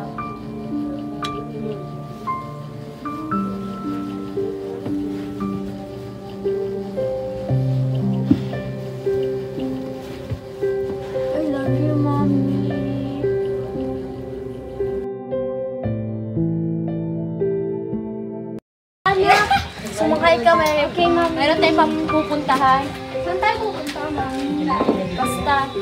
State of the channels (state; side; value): identical; both; correlation 1.00